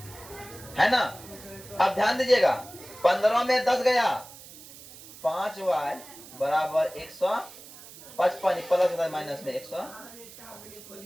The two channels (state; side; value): noise; right; hiss, 18 dB below the sound